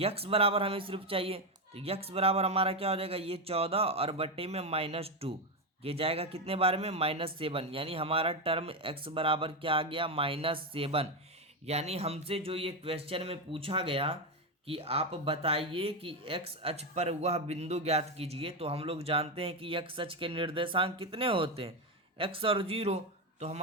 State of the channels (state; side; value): normal; both; correlation 0.10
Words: बराबर हमें सिर्फ चाहिए, तो x बराबर हमारा क्या हो जाएगा ये 14 और बट्टे में -2, ये जाएगा कितने बार में -7, यानी हमारा टर्म x बराबर क्या आ गया -7। यानी हमसे जो ये क्वेश्चन में पूछा गया कि आप बताइए कि x अक्ष पर वह बिंदु ज्ञात कीजिए, तो हम लोग जानते हैं कि x अक्ष के निर्देशांक कितने होते हैं x और 0, तो